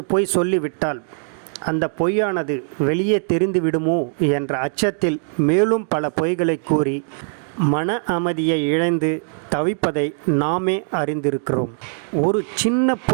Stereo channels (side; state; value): left; silent; digital silence